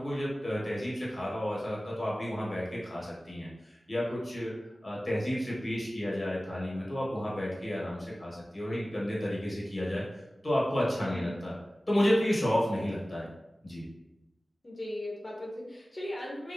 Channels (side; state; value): both; normal; correlation 0.97